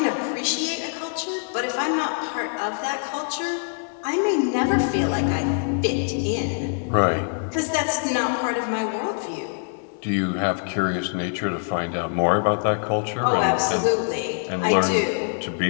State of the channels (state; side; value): silent; right; digital silence